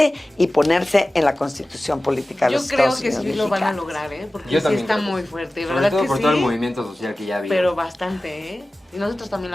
y ponerse en la Constitución política de los Estados Unidos. Yo creo que sí lo van a lograr, porque sí está muy fuerte, ¿verdad? Sobre todo que por sí, todo el movimiento social que ya había. pero bastante, Y nosotros también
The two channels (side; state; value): both; normal; correlation 0.96